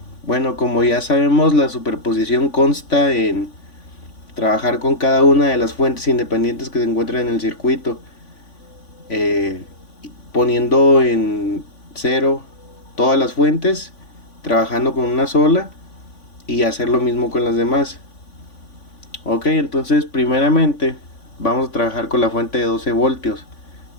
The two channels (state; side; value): late; right; 3.5 ms